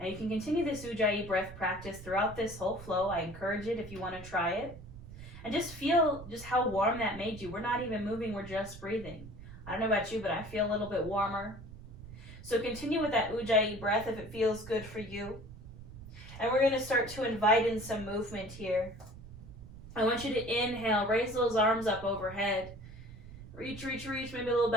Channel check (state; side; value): noise; right; rumble, 15 dB below the sound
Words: you can continue this ujjayi breath practice throughout this whole flow. I encourage it if you want to try it. And just feel just how warm that made you. We're not even moving, we're just breathing. I don't know about you, but I feel a little bit warmer. So continue with that ujjayi breath if it feels good for you. And we're going to start to invite in some movement here. I want you to inhale, raise those arms up overhead. Reach, reach, reach, maybe a little